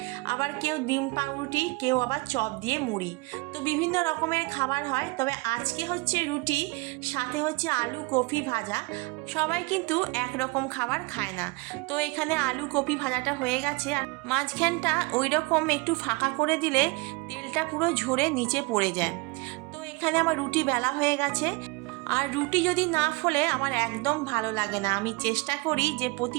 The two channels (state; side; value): quieter; left; 25.6 dB